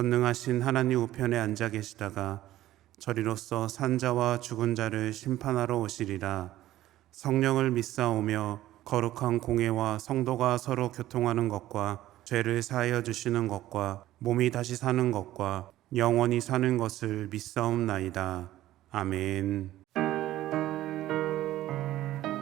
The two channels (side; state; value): left; quieter; 14.5 dB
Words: 하나님 우편에 앉아 계시다가 저리로서 산자와 죽은 자를 심판하러 오시리라. 성령을 믿사오며 거룩한 공회와 성도가 서로 교통하는 것과 죄를 사하여 주시는 것과 몸이 다시 사는 것과 영원히 사는 것을 믿사옵나이다. 아멘.